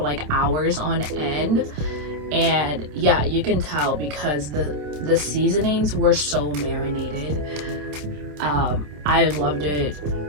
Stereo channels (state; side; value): late; left; 27 ms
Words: like hours on end. And yeah, you can tell because the seasonings were so marinated. I loved it